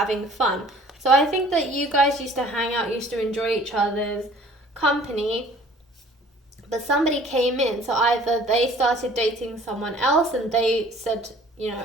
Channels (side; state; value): both; normal; correlation 0.52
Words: fun. So I think that you guys used to hang out, used to enjoy each other's company, but somebody came in. So either they started dating someone else and they said, you know,